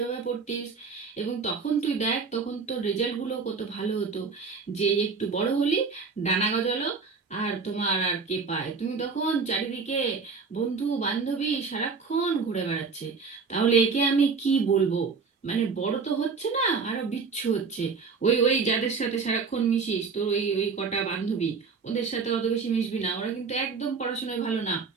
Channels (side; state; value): left; quieter; 5.0 dB